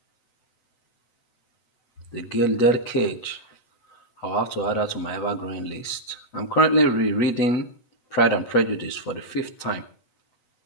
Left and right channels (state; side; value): late; right; 8.0 ms